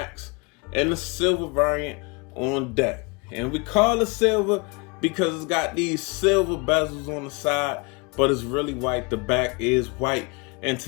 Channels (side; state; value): right; quieter; 30.2 dB